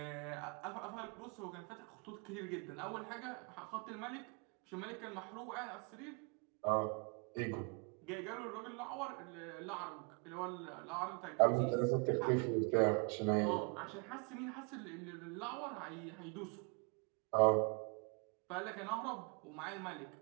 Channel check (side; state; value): left; quieter; 35.6 dB